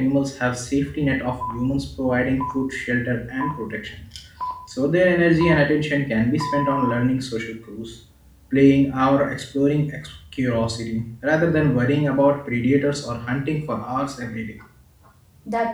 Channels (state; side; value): identical; both; correlation 1.00